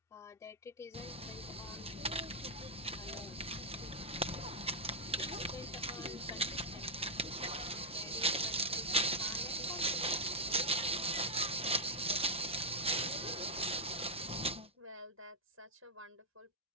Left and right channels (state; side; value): normal; both; correlation -0.03